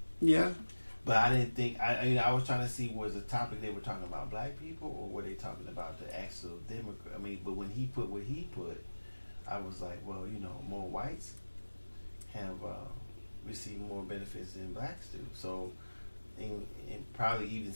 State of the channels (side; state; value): both; inverted; correlation -1.00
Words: Yeah. But I didn't think, I was trying to see, was the topic they were talking about black people, or were they talking about the actual Democrat? I mean, but when he put what he put, I was like, well, you know, more whites have received more benefits than blacks do. So, and probably even